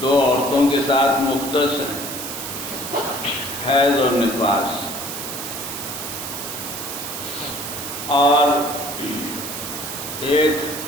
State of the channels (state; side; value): noise; right; hiss, 7 dB below the sound